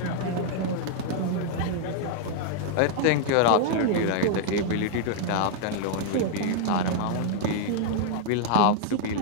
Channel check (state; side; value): different; both; correlation 0.00